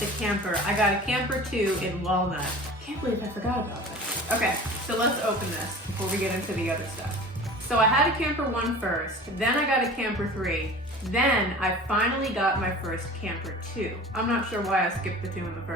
camper. I got a camper 2 in walnut. Can't believe I forgot about that. Okay, so let's open this before we get into the other stuff. So I had a camper 1 first, then I got a camper 3, then I finally got my first camper 2. I'm not sure why I skipped the 2 in the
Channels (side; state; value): both; normal; correlation 0.40